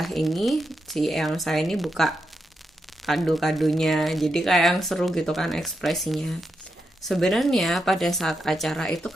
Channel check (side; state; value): both; normal; correlation 0.85